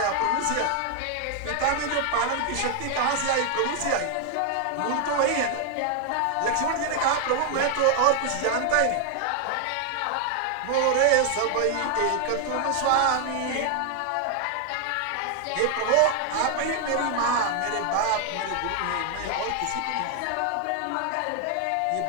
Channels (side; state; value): both; different; correlation 0.00